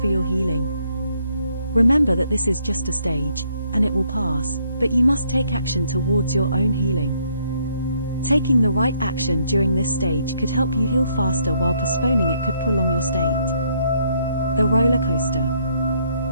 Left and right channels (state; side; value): inverted; both; correlation -0.70